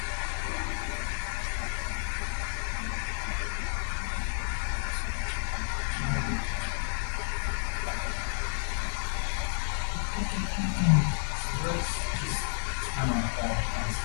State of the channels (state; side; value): silent; right; digital silence